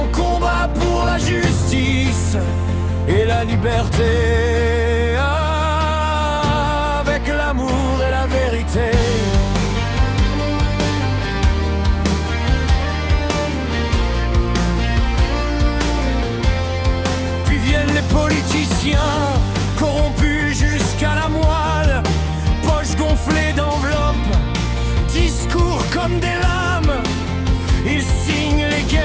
combat pour la justice et la liberté, avec l'amour et la vérité. Puis viennent les politiciens, corrompus jusqu'à la moelle, poches gonflées d'enveloppes, discours comme des lames, ils signent les guerres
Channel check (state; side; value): identical; both; correlation 1.00